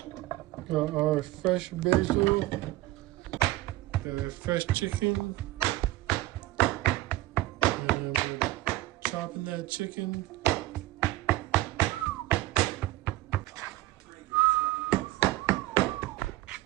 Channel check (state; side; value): quieter; left; 17.4 dB